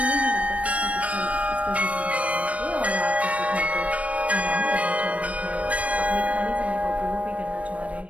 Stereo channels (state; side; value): late; left; 0.065 ms